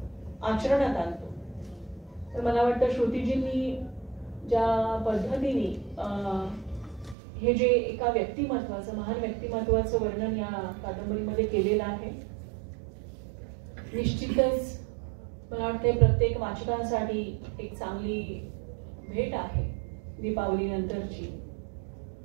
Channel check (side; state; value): left; drops out; at 7.2 s